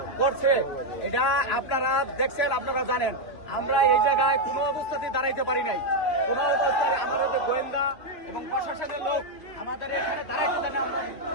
করছে এটা আপনারা দেখছেন, আপনারা জানেন। আমরা এই জায়গায় কোনো অবস্থাতেই দাঁড়াইতে পারি নাই। কোনো অবস্থায় আমাদের যে গোয়েন্দা এবং প্রশাসনের লোক আমাদের এখানে দাঁড়াইতে দেন। আমরা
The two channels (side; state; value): right; late; 2.9 ms